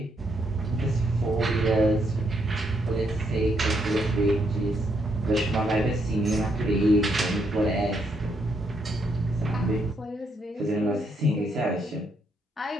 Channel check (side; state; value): both; normal; correlation 0.76